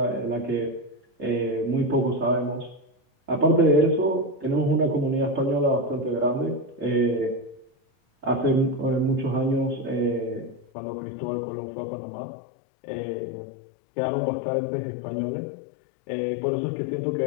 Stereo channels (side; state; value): right; drops out; at 10.7 s